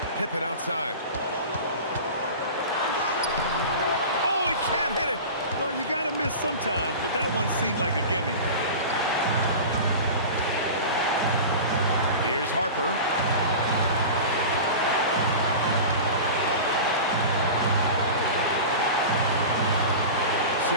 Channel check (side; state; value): both; inverted; correlation -0.32